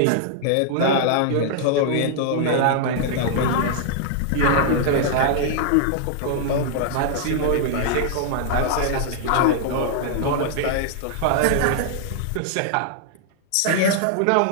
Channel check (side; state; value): both; different; correlation 0.00